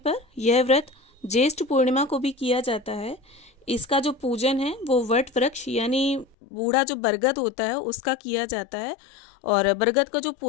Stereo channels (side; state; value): right; drops out; at 6.4 s